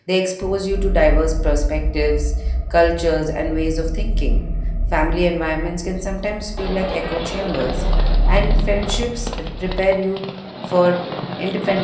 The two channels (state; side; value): identical; both; correlation 1.00